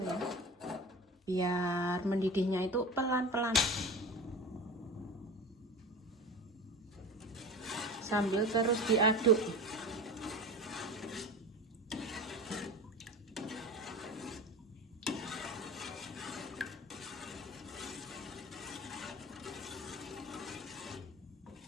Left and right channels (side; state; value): both; normal; correlation 0.33